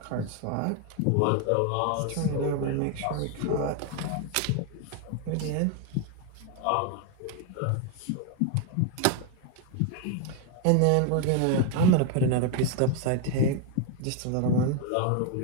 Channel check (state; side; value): different; both; correlation 0.01